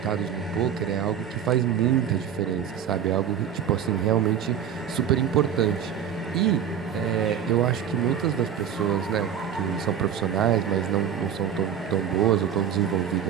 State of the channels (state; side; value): quieter; left; 8.7 dB